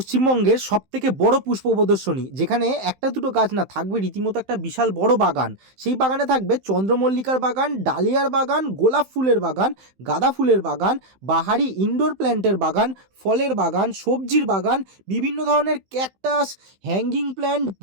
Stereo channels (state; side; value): late; left; 15 ms